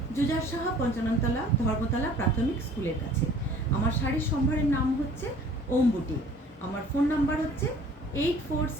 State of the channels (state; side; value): normal; both; correlation 0.51